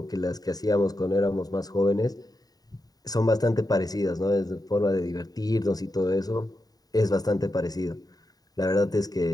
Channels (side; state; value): right; late; 0.18 ms